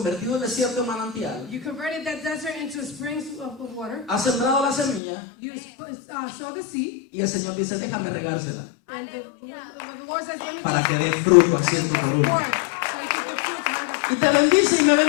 el desierto en manantial, you converted that desert into springs of water, has sembrado la semilla you sow the seed, y el Señor dice, déjame regársela and the Lord says, let me para que dé fruto a ciento por uno. pour it, so you can get fruit to have Y te bendice y me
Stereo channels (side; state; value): right; drops out; at 5.0 s